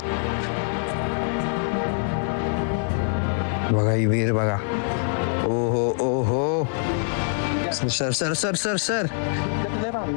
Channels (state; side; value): silent; right; digital silence